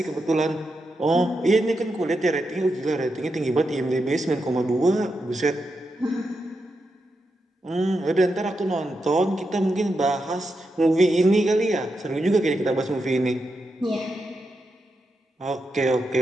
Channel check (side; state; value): both; normal; correlation 0.86